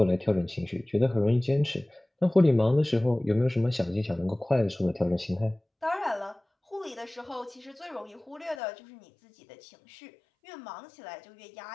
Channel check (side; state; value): right; drops out; at 8.6 s